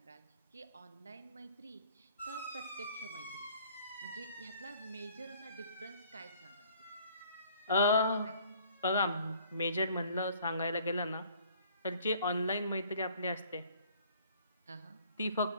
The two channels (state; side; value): inverted; both; correlation -0.56